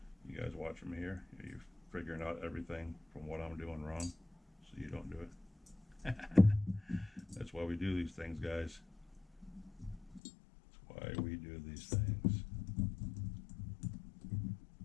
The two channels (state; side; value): drops out; right; at 10.2 s